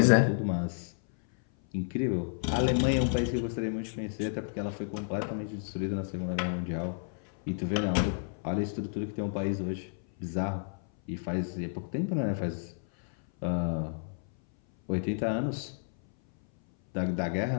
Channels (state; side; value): silent; right; 57 dB below the other